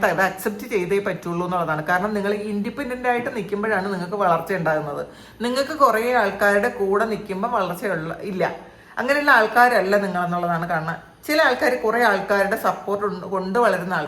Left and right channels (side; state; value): both; identical; correlation 1.00